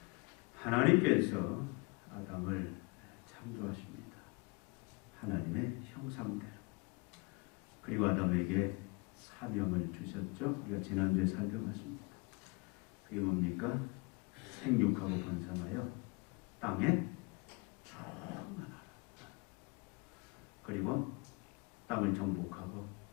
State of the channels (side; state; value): right; quieter; 28.8 dB